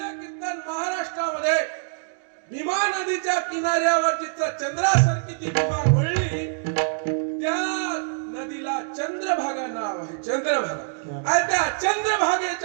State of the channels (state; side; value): silent; left; digital silence